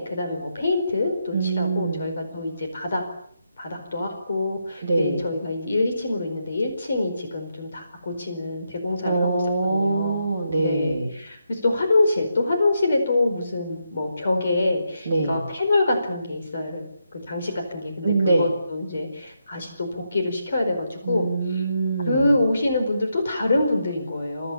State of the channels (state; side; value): inverted; both; correlation -0.82